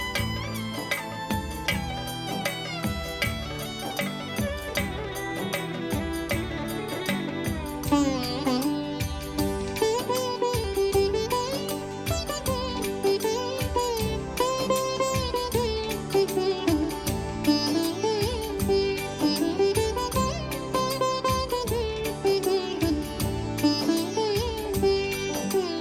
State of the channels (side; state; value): both; identical; correlation 1.00